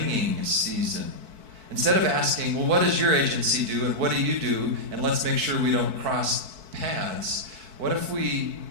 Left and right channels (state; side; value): late; left; 4.6 ms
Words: season. Instead of asking, well, what does your agency do and what do you do, and let's make sure we don't cross paths, what if we